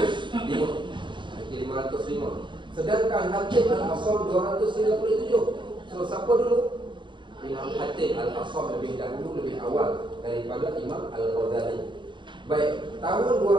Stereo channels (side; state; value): left; late; 0.23 ms